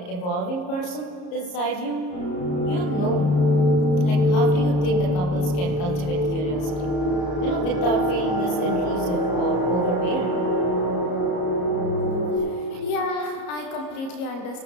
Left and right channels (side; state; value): right; late; 34 ms